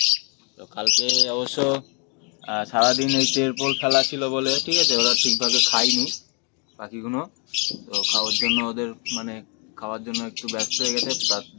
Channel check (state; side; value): quieter; right; 35.6 dB